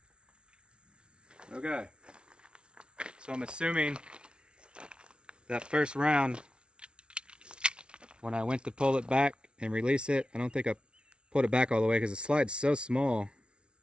Okay. So I'm assuming that first round, when I went to pull it back and release it, I don't think I pulled it back all the way because the slide's so small.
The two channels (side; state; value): left; late; 0.057 ms